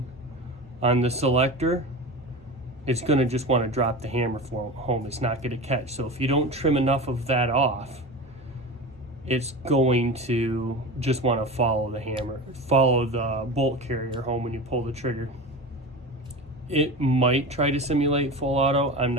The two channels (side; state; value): both; normal; correlation 0.29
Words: on the selector, it's going to just want to drop the hammer home. It's not going to catch. So if you don't trim enough of that off, it's going to just want to follow the hammer, follow the bolt carrier home when you pull the trigger. It might try to simulate full auto. I'm